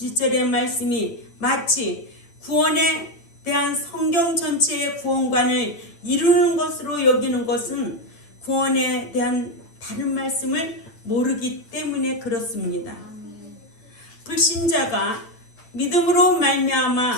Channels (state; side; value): late; right; 8.9 ms